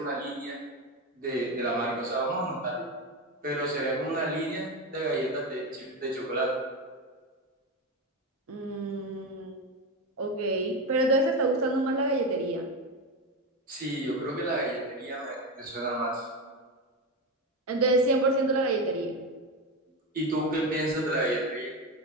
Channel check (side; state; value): both; normal; correlation 0.16